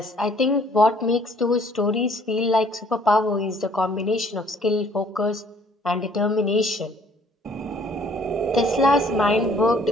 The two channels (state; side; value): normal; both; correlation 0.59